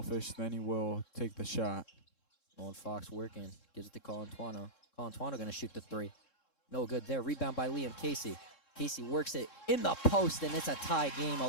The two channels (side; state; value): right; late; 3.7 ms